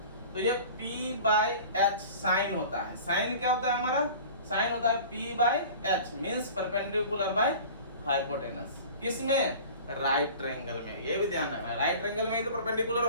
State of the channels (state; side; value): inverted; both; correlation -0.41